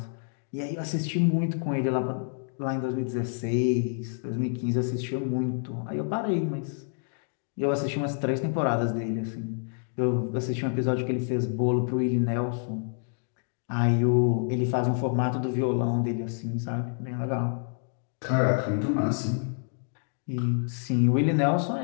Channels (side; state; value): right; silent; 59 dB below the other